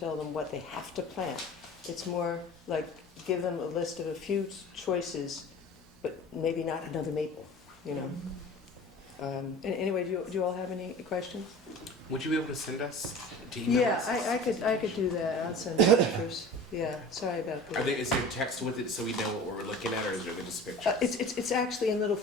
them what they have to plant. It's more like give them a list of a few choices, but maybe not another maple, Anyway, do you all have any questions? Would you be able to send us to email Yeah, us? I could do that. I'll send pictures. Yeah, sorry about that. Is there text with it so we know what we're looking at, or is there just pictures? It's actually in little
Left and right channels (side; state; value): both; normal; correlation 0.39